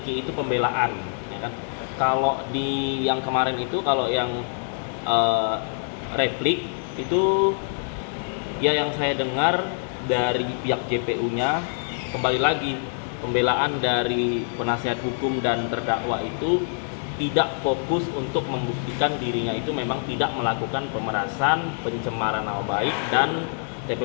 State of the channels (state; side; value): silent; right; digital silence